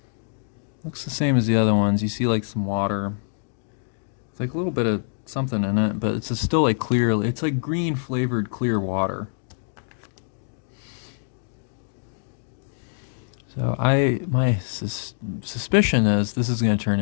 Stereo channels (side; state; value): right; silent; digital silence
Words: Looks the same as the other ones. You see like some water. It's like a little bit of something in it, but it's still like clear. It's like green flavored clear water. So my suspicion is this is going to turn